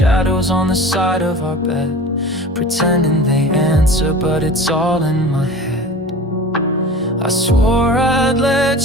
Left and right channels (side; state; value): both; normal; correlation 0.38